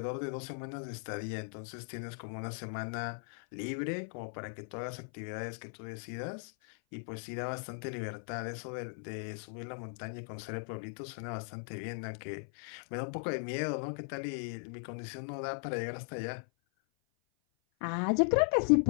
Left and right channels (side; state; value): right; silent; 52 dB below the other